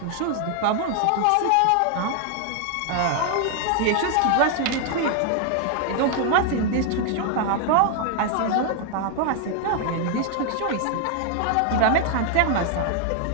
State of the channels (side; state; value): both; different; correlation 0.00